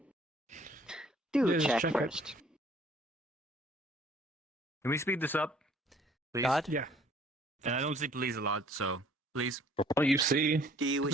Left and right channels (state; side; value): normal; both; correlation 0.57